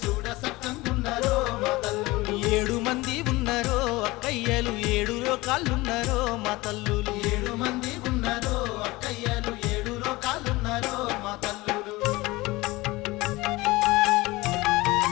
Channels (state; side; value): quieter; right; 20.9 dB